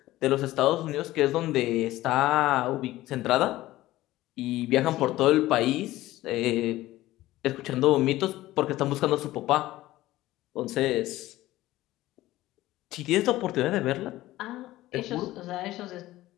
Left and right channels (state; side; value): quieter; right; 16.4 dB